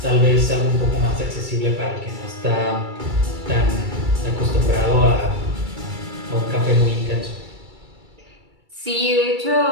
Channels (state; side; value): late; left; 2.3 ms